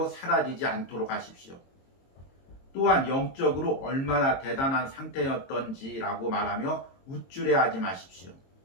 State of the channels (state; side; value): late; right; 22 ms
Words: 사라지지 않도록 하십시오. 또한 영적으로 얼마나 대단한 상태였던지라고 말하며 우쭐해하지 마십시오.